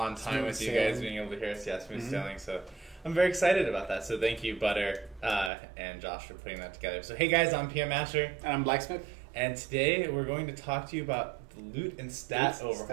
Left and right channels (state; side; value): drops out; left; at 5.5 s